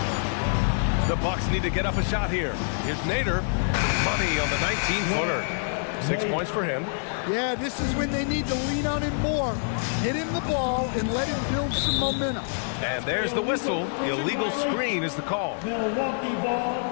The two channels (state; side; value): silent; right; digital silence